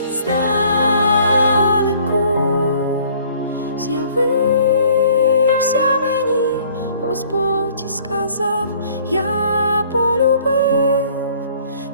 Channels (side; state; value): both; inverted; correlation -0.56